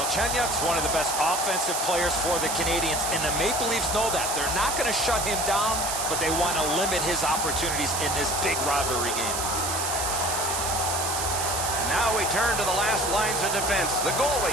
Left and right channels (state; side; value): noise; right; hiss, 2 dB below the sound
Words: one of the best offensive players for the Canadians, and the Maple Leafs know that. They're not going to shut him down, but they want to limit his opportunities in this big rivalry game. Now we turn to the last lines of defense, the